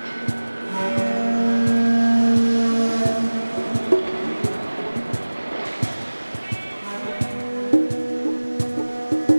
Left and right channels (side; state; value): both; inverted; correlation -1.00